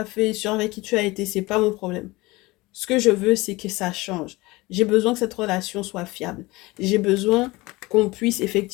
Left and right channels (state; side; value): quieter; right; 21.7 dB